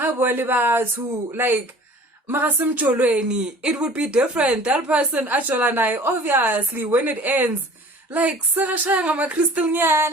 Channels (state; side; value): normal; both; correlation 0.47